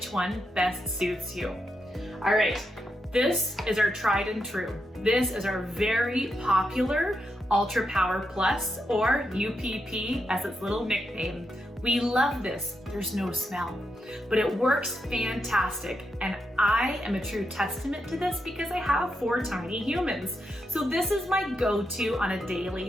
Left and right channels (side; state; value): both; normal; correlation 0.84